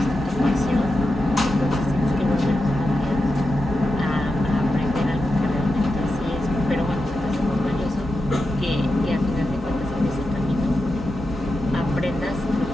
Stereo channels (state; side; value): normal; both; correlation 0.89